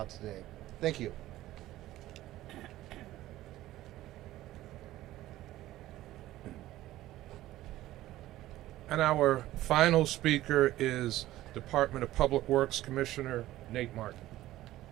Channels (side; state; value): left; quieter; 15.3 dB